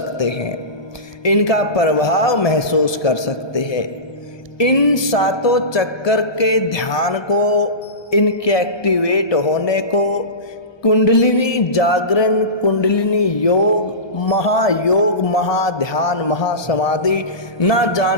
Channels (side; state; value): right; late; 1.2 ms